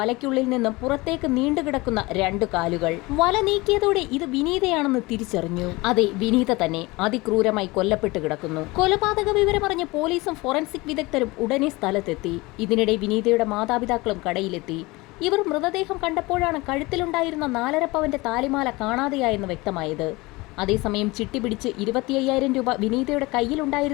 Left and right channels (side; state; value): right; quieter; 22.7 dB